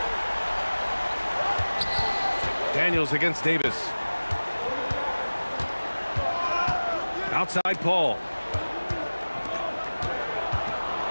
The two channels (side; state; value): both; inverted; correlation -1.00